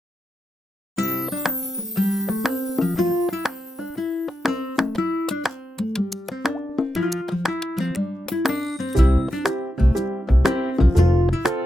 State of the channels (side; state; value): both; normal; correlation 0.87